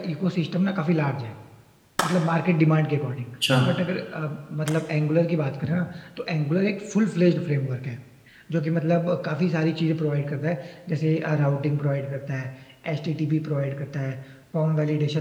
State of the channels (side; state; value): both; identical; correlation 1.00